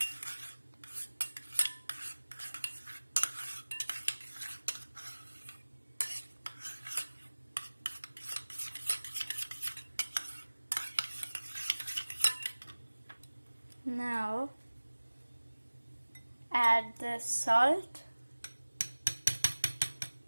Now add the salt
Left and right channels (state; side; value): inverted; both; correlation -1.00